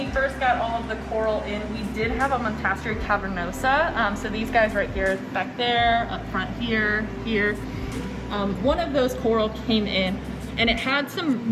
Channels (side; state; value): both; identical; correlation 1.00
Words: first got all of the coral in, we did have a Montastri cavernosa. So these guys right here, back there, up front here, here. One of those coral came in and it had